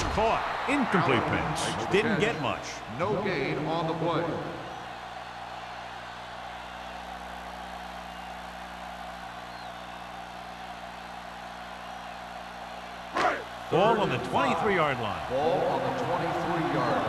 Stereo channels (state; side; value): identical; both; correlation 1.00